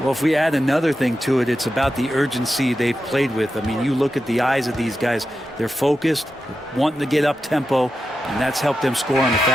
if we add another thing to it, it's about the urgency they've played with. I mean, you look at the eyes of these guys. They're focused, wanting to get up tempo, and that's helped them score on the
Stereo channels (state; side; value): normal; both; correlation 0.90